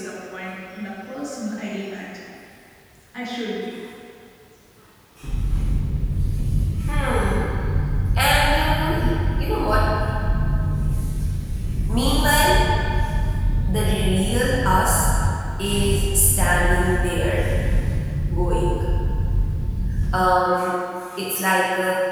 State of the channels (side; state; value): both; identical; correlation 1.00